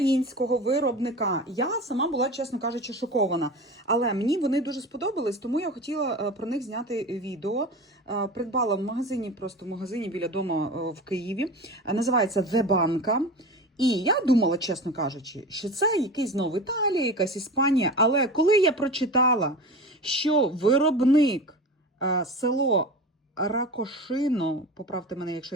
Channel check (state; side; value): normal; both; correlation 0.31